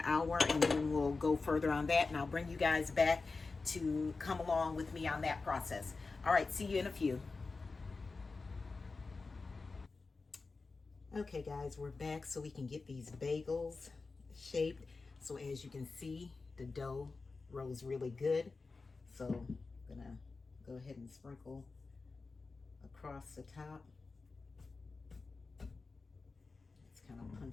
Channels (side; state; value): right; quieter; 4.0 dB